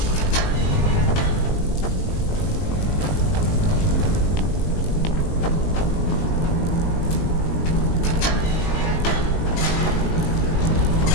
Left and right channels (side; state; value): right; late; 19 ms